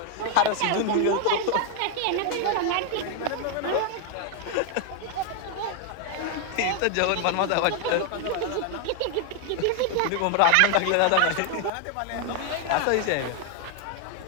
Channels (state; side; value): different; both; correlation 0.00